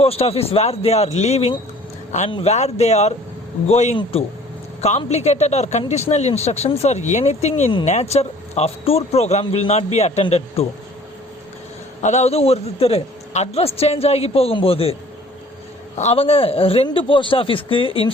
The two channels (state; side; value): normal; both; correlation 0.52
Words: post office wear they are leaving and where they are going to. Complicated or conditional instructions or anything in nature of tour program will not be attended to. அதாவது ஒருத்தர் address change ஆகி போகும்போது அவங்க 2 post ஆஃபீஸ்க்கு